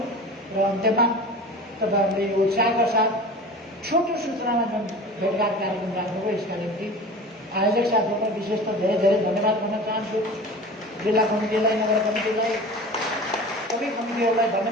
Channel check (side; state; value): both; normal; correlation 0.36